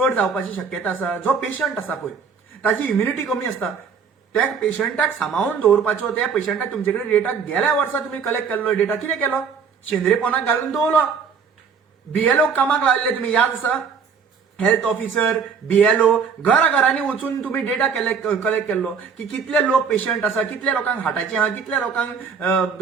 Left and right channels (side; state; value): left; quieter; 6.1 dB